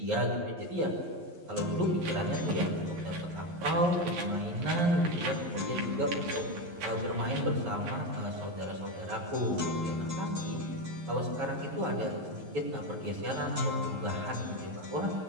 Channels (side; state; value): left; late; 11 ms